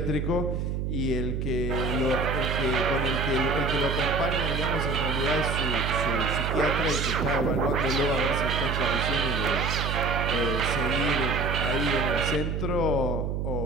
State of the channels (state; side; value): noise; right; hum, 1 dB below the sound